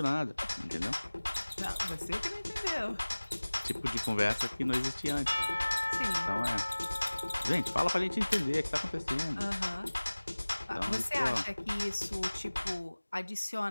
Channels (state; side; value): inverted; both; correlation -1.00